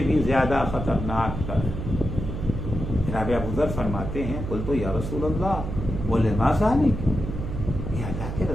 بھی زیادہ خطرناک تر ہے۔ جناب ابو ذر فرماتے ہیں قلت یا رسول اللہ ولما ذلک، یہ اللہ کے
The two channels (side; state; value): right; noise; hum, 5 dB below the sound